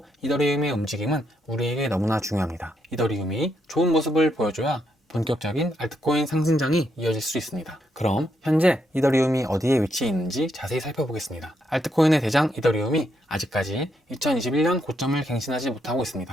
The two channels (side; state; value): both; normal; correlation 0.78